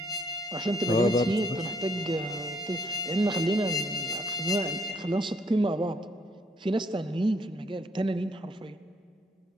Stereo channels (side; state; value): both; normal; correlation 0.67